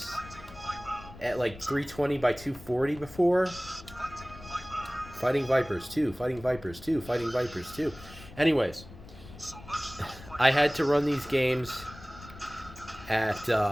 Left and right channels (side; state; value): left; noise; rumble, 17 dB below the sound